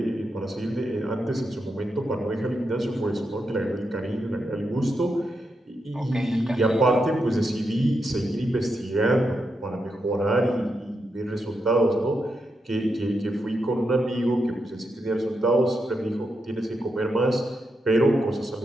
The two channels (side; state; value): both; normal; correlation 0.84